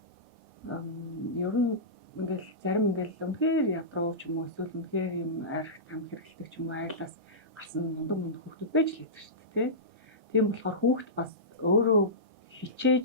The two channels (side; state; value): both; normal; correlation -0.18